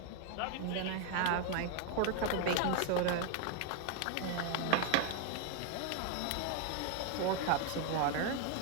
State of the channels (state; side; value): different; both; correlation 0.01